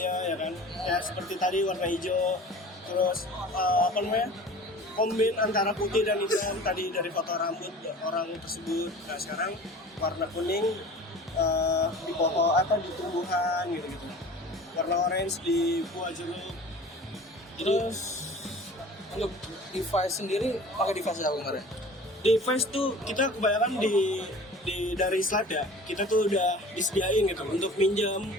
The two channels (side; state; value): both; normal; correlation 0.42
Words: ya kan, ya seperti tadi warna hijau, terus apa namanya, kombin antara putih dan hitam tadi dari foto rambut orang tersebut. Nah sekarang warna kuning di foto di tumbuhan gitu, warna orange di buah jeruk. Terus untuk device sendiri pakai device apa kemarin? Device tuh kita kebanyakan dari slide ya, kita tuh udah disediain gitu untuk minjam,